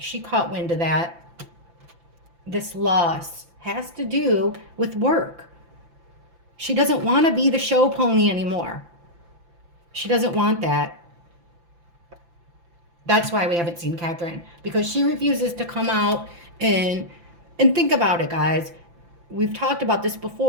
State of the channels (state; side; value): late; left; 5.9 ms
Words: caught wind of that. This loss has to do with work. She doesn't want to be the show pony anymore. She doesn't want that. That's why we haven't seen Catherine, because she refuses to come out and think about it, guys. We've talked about this